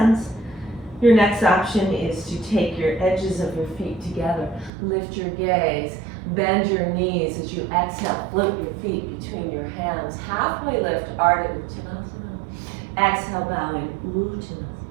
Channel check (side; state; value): left; drops out; at 4.7 s